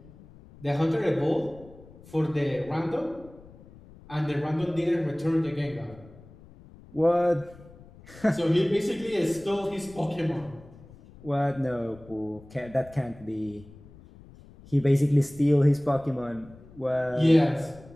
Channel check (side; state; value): left; noise; rumble, 21 dB below the sound